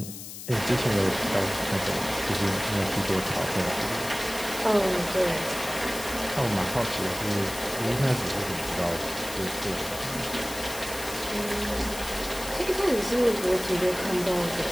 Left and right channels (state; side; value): noise; left; hiss, 11 dB below the sound